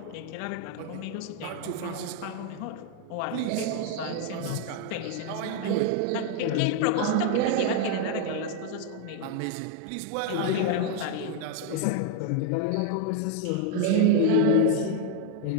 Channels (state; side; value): different; both; correlation 0.00